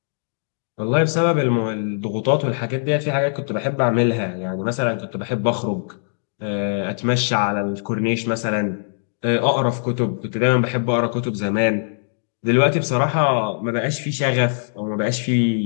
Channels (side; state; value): right; silent; digital silence